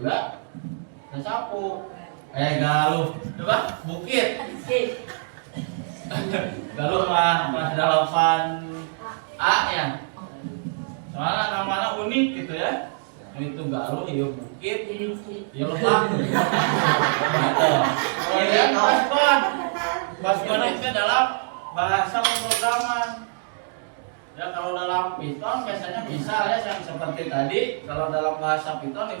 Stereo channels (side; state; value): left; silent; digital silence